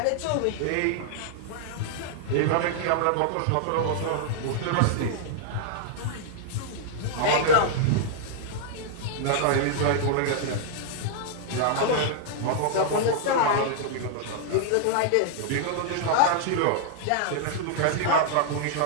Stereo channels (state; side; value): different; both; correlation -0.01